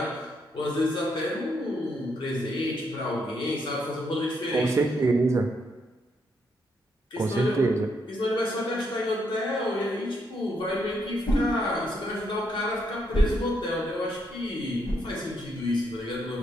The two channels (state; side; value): normal; both; correlation 0.76